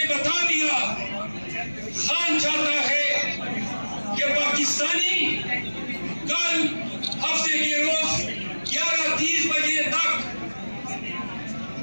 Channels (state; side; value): inverted; both; correlation -1.00